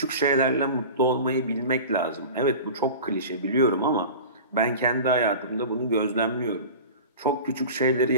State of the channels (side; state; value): both; inverted; correlation -0.35